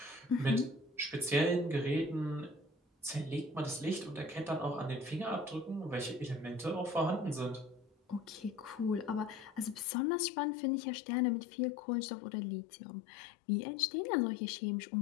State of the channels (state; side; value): drops out; right; at 9.9 s